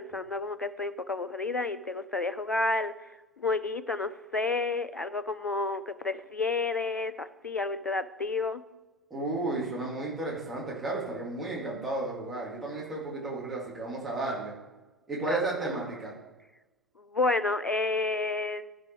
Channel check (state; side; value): normal; both; correlation 0.36